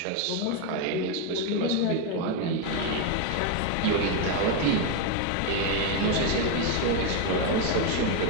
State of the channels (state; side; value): different; both; correlation 0.02